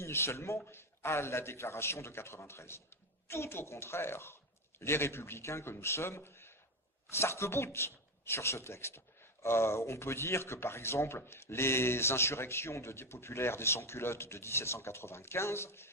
seulement, à la déclaration de 93. Tout au contraire, les républicains que nous sommes s'arc-boutent sur ce texte. On peut dire que, par exemple, les insurrections des populaires des sans-culottes de 1795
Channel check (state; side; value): normal; both; correlation 0.13